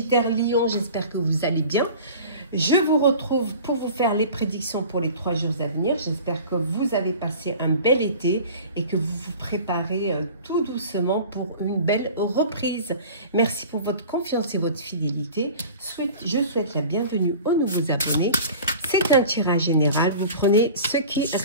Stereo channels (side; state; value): both; inverted; correlation -0.41